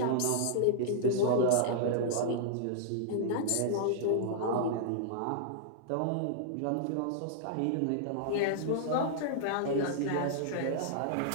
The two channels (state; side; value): different; both; correlation -0.01